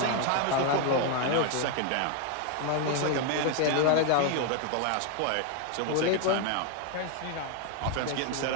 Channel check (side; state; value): both; different; correlation 0.01